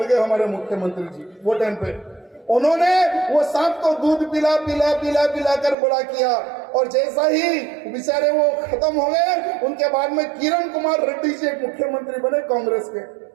गए हमारे मुख्यमंत्री जी। वो टाइम पे उन्होंने वो सांप को दूध पिला पिला पिला पिला कर बड़ा किया, और जैसा ही बेचारे वो खत्म हो गए, उनके बाद में किरण कुमार रेड्डी जी एक मुख्यमंत्री बने कांग्रेस के।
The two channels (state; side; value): drops out; left; at 5.8 s